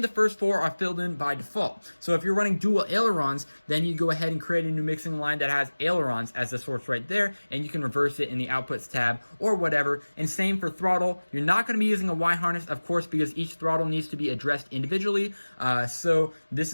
first 4 are filled in by default. So if you're running dual ailerons, then you go ahead and create a new mixing line that has ailerons as the source right there, and you can reverse it in the outputs tab or whatever. And same for throttle. You're not going to be using a Y harness, of course, because each throttle needs to be addressed individually. So this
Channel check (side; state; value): both; inverted; correlation -1.00